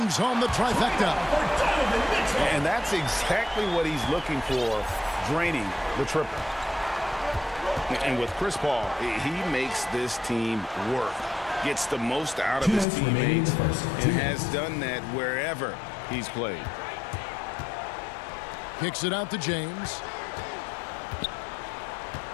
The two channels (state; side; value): drops out; right; at 12.9 s